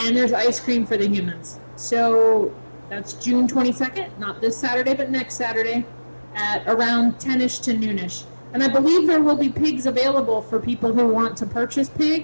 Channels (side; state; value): both; inverted; correlation -1.00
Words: there's ice cream for the humans. So that's June 22nd, not this Saturday, but next Saturday at around 10ish to noonish. And I believe there will be pigs available for people who want to purchase